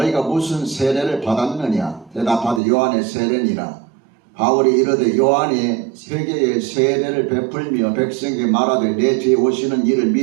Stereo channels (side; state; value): left; drops out; at 2.6 s